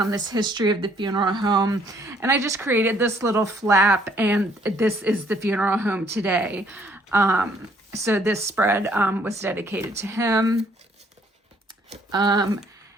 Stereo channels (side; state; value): both; normal; correlation 0.64